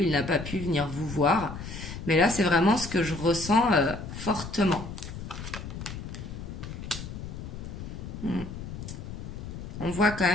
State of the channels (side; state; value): left; noise; rumble, 9 dB below the sound